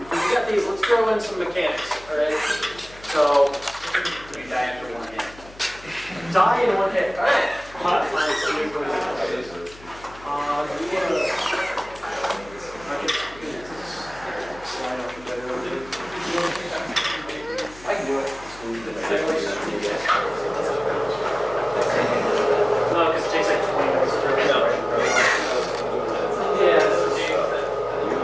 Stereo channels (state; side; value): noise; left; hum, 21 dB below the sound